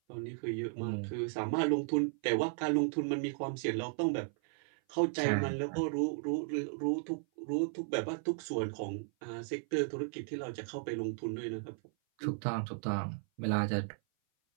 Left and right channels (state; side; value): silent; left; 54 dB below the other